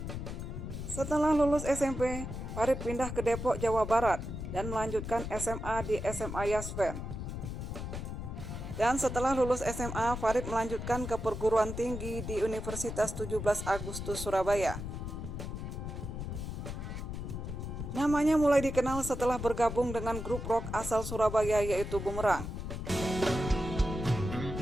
Setelah lulus SMP, Farid pindah ke Depok, Jawa Barat, dan melanjutkan SMA di SMA Yasven. Dan setelah lulus SMA, Farid melanjutkan ke perguruan tinggi di Universitas 17 Agustus Surabaya. Namanya mulai dikenal setelah bergabung dengan grup rock asal Surabaya yaitu Bumerang.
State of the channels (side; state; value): left; noise; rumble, 6 dB below the sound